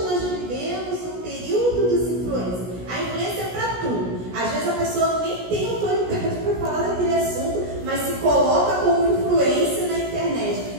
nós vivemos um período dos influências. A influência é para tudo. Às vezes a pessoa nem tem autoridade para falar daquele assunto, mas se coloca como influência na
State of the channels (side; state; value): left; late; 17 ms